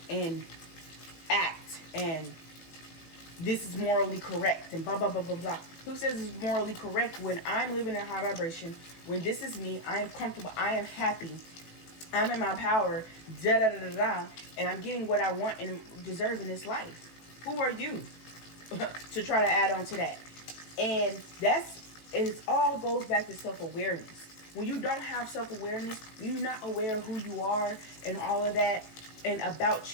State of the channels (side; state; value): right; late; 18 ms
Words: and act, and this is morally correct and blah, blah, blah, blah, blah. Who says it's morally correct when I'm living in a high vibration, when this is me, I am comfortable, I am happy, I'm in my power, da, da, da, da, da, and I'm getting what I want and deserve in this life? Who are you to try to add on to that? And it all goes back to self-awareness. When you don't have self-awareness, when you're not aware of who you are and all of that, and about